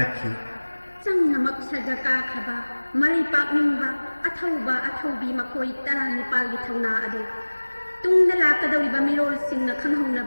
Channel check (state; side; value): inverted; both; correlation -1.00